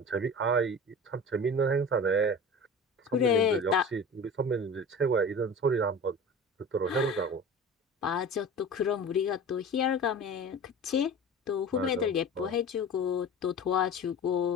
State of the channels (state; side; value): normal; both; correlation 0.35